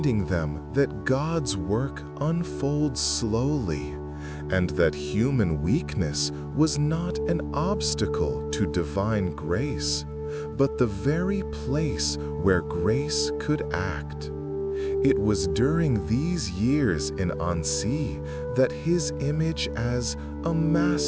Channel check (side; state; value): both; identical; correlation 1.00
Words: them that God's work unfolds slowly and that human weakness was not an obstacle to divine grace, but the very place where grace could act. It was during these years in Annecy that his image as a